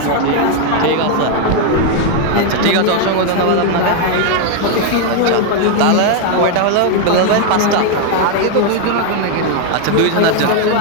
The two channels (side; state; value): both; different; correlation 0.00